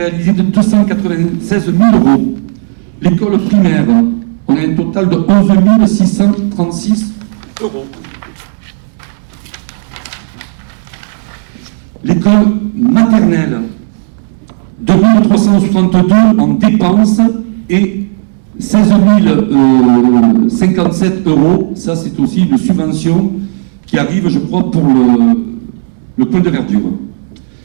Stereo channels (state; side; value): silent; left; digital silence